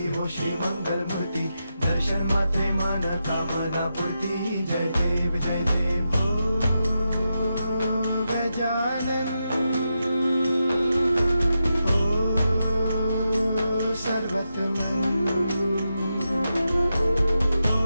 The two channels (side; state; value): both; inverted; correlation -0.87